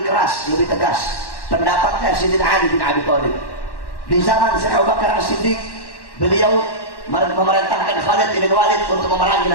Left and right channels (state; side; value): late; right; 1.1 ms